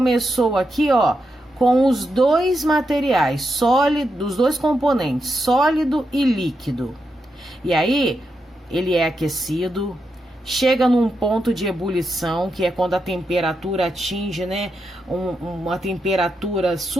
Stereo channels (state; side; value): normal; both; correlation 0.85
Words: aqui, ó, com os dois materiais sólidos, os dois componentes, sólido e líquido. E aí, ele é aquecido, chega num ponto de ebulição, que é quando a temperatura atinge, né, uma temperatura